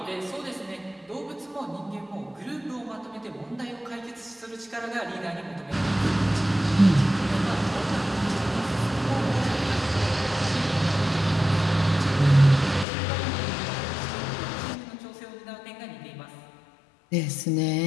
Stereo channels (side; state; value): right; drops out; at 12.9 s